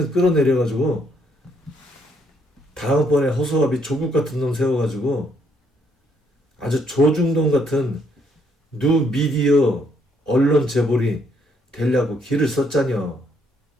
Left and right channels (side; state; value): both; normal; correlation 0.71